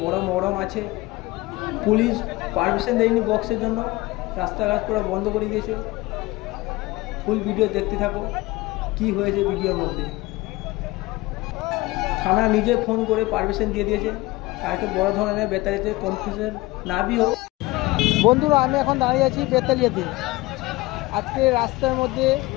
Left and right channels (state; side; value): quieter; right; 20.7 dB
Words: বড় মহরম আছে। পুলিশ পারমিশন দেয়নি বক্সের জন্য, রাস্তাঘাট পুরো বন্ধ করে দিয়েছে। ফুল ভিডিও দেখতে থাকো কি হয়েছে ভিডিওর মধ্যে। থানা নিজে ফোন করে পারমিশন দিয়ে দিয়েছে। কালকে বড় ধরনের বেতালিয়াতে কনফিউশন না বি হোক। বন্ধুরা, আমি এখন দাঁড়িয়ে আছি বেতালিয়াতে। আজকে রাস্তার মধ্যে